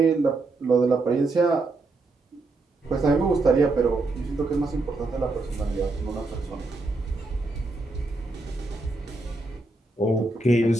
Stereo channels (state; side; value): quieter; left; 3.2 dB